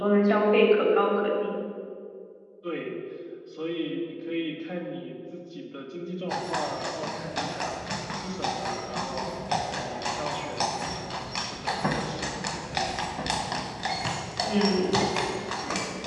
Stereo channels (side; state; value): both; identical; correlation 1.00